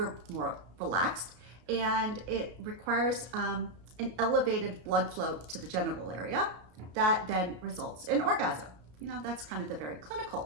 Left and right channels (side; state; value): left; late; 33 ms